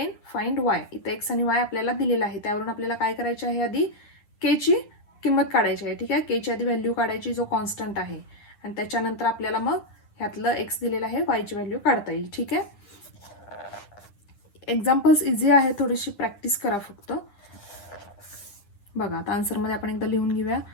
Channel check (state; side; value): late; right; 9.7 ms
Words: find y. इथे x आणि y आपल्याला दिलेला आहे, त्यावरून आपल्याला काय करायचे आहे, आधी k ची किंमत काढायची आहे. ठीक आहे, k ची आधी व्हॅल्यू काढायची जो कॉन्स्टंट आहे, आणि त्याच्यानंतर आपल्याला मग ह्यातलं x दिलेलं आहे y ची व्हॅल्यू काढता येईल. ठीक आहे, एक्झाम्पल्स इझी आहे, थोडीशी प्रॅक्टिस करा फक्त. बघा आता आन्सरमध्ये आपण एकदा लिहून घेऊया.